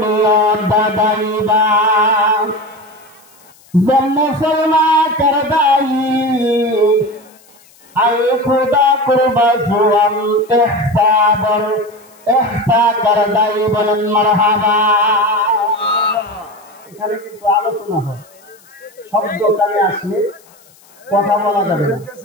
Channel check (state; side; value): noise; left; hiss, 28 dB below the sound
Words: দাদাইবা जब मुसलमा कर दाई আই খুদা কুরবাজুয়াম ইহসাবর ইহসা করদাই বলেন মারহাবা। এখানে কিন্তু আলোচনা হয়, শব্দ কানে আসলে কথা বলা যাবে না,